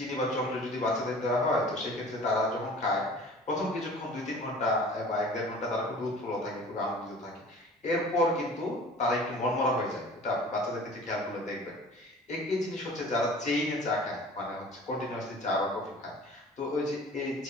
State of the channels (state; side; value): normal; both; correlation 0.45